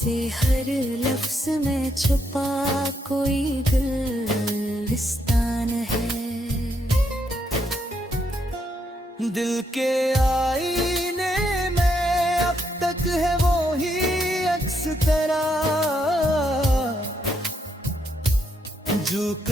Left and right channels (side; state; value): both; normal; correlation 0.77